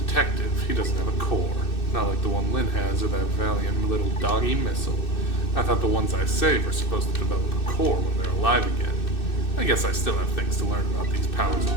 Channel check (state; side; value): late; right; 2.6 ms